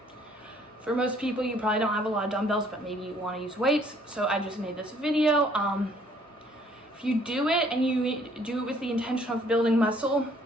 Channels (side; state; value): both; normal; correlation 0.61